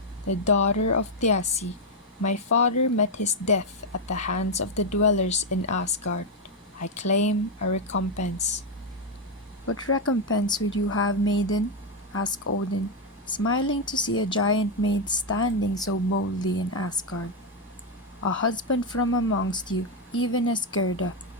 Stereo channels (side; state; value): both; normal; correlation 0.02